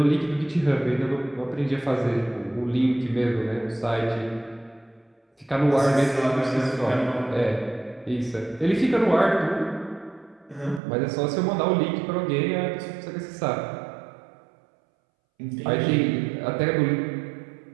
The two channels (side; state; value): left; drops out; at 10.8 s